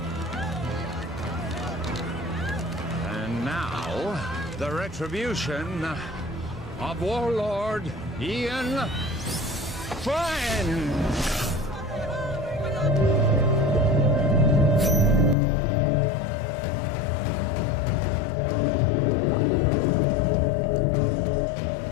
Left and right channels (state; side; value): drops out; right; at 15.4 s